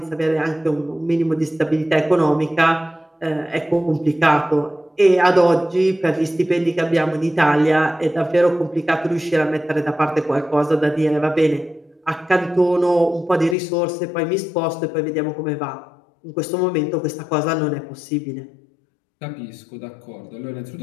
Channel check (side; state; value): right; drops out; at 13.6 s